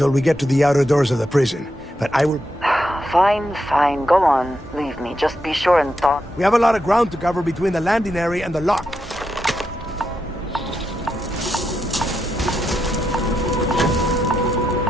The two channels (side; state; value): both; normal; correlation 0.83